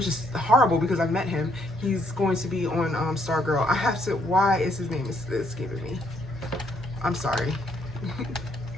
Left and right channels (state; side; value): normal; both; correlation 0.70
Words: is horrible because I've met him. He's going to be on Stargirl. I have to, why is his name escaping me? I'm sorry.